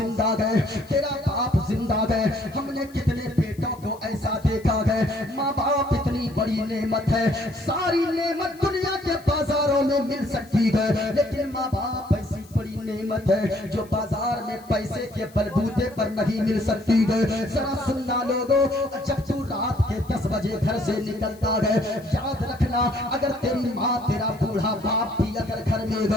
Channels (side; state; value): left; noise; hiss, 26 dB below the sound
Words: गए, तेरा बाप जिंदा गए, हमने कितने बेटों को ऐसा देखा है। माँ बाप इतनी बड़ी नेमत है, सारी नेमत दुनिया के बाजारों में मिल सकती है, लेकिन माँ बाप ऐसी बड़ी नेमत है जो बाजार में पैसे के बलबूते पर नहीं मिल सकती है। जरा सुनना लोगों, जब तू रात के 10 बजे घर से निकलता है, याद रखना अगर तेरी माँ तेरा बूढ़ा बाप भी अगर घर में